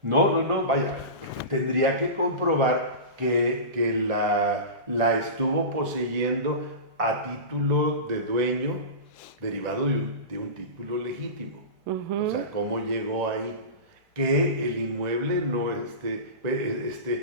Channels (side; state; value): left; late; 2.1 ms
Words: No, vaya. Tendría que comprobar que la estuvo poseyendo a título de dueño derivado de un título legítimo. O sea, ¿cómo llegó ahí? Que el inmueble no